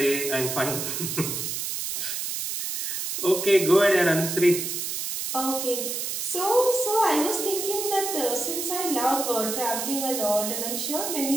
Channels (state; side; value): noise; right; hiss, 3 dB below the sound